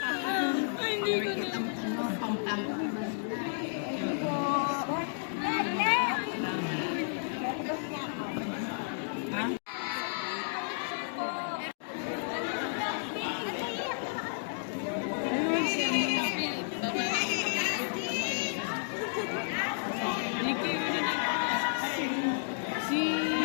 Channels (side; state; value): right; silent; digital silence